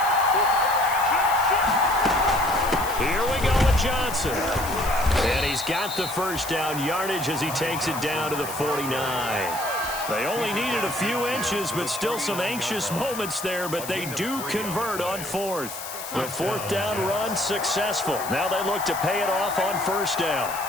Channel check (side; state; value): left; noise; hiss, 10 dB below the sound